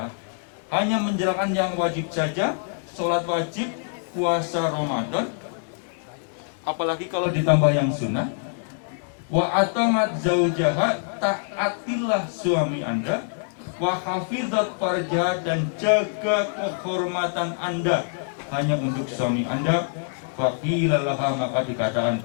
Hanya menjalankan yang wajib saja, sholat wajib, puasa Ramadan, apalagi kalau ditambah yang sunnah. Wa atamat zaujaha, taatilah suami Anda. Wa hafizat farjah, dan jaga kehormatan Anda hanya untuk suami Anda. Faqila laha, maka dikatakan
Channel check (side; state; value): right; silent; digital silence